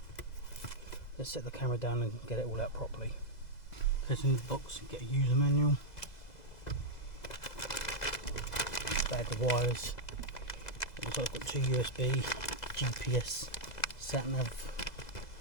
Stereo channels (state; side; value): late; right; 2.0 ms